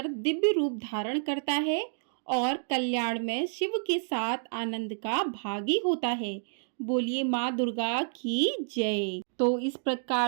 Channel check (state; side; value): silent; left; digital silence